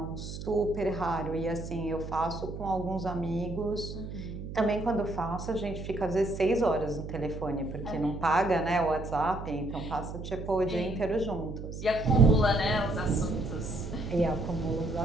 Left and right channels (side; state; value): right; noise; hum, 8 dB below the sound